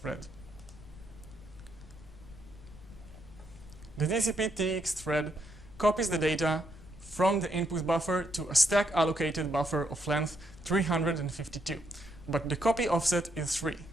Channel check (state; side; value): noise; left; rumble, 19 dB below the sound